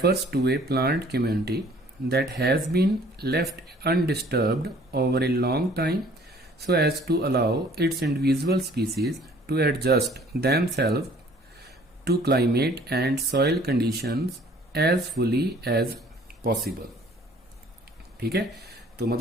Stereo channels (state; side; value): normal; both; correlation 0.55